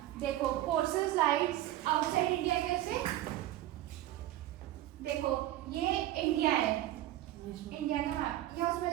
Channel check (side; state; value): left; quieter; 14.4 dB